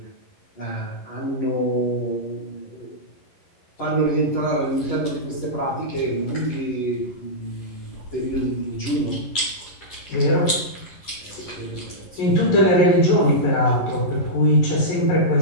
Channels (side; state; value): right; late; 11 ms